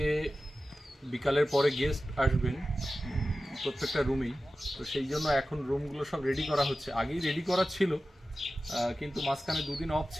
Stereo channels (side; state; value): both; normal; correlation 0.94